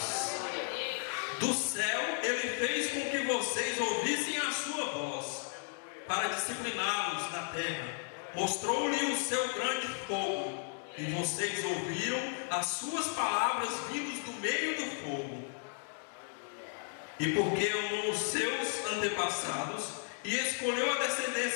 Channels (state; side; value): silent; right; 55 dB below the other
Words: Do céu ele fez com que vocês ouvissem a sua voz para discipliná-los na terra. Mostrou-lhe o seu grande fogo, e vocês ouviram as suas palavras vindas do meio do fogo. E porque amou os seus antepassados e escolheu a